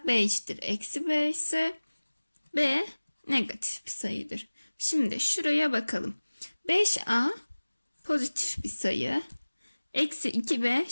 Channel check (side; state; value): both; inverted; correlation -1.00